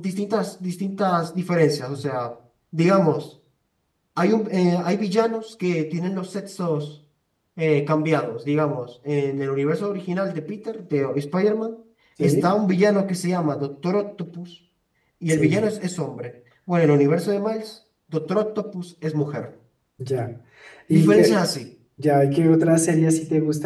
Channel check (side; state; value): both; identical; correlation 1.00